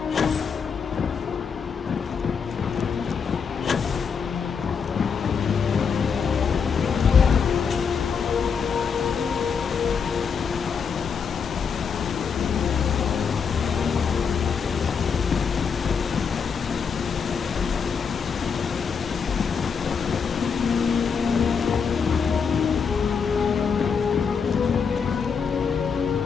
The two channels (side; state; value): right; quieter; 6.2 dB